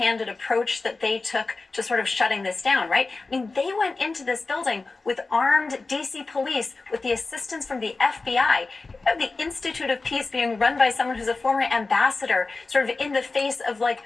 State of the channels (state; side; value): quieter; right; 3.7 dB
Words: approach that they took to sort of shutting this down, right? I mean, they went into this building with armed DC police, with the assistance from the FBI. You have the Institute of Peace being run by someone who's a former ambassador, sort of in the face of like